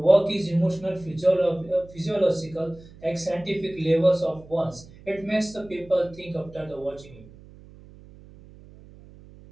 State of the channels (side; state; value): right; noise; hum, 21 dB below the sound